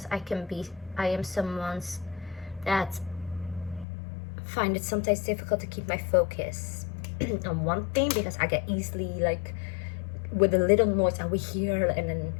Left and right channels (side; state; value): right; drops out; at 3.9 s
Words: I am someone's that find it sometimes difficult to keep my focus on one thing, because I get easily, like, with a little noise I will hear, and then